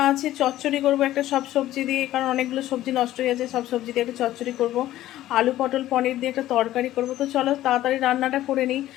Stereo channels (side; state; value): right; quieter; 14.2 dB